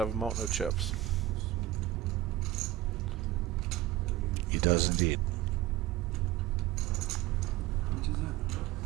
a mountain of chips. He does indeed.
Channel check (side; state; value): left; quieter; 14.7 dB